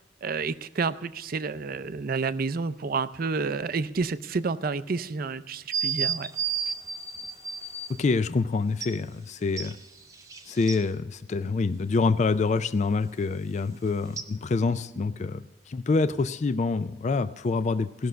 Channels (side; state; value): both; normal; correlation 0.56